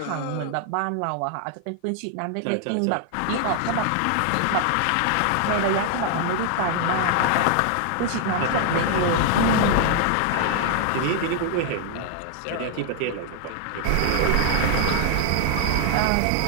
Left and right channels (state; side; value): different; both; correlation 0.00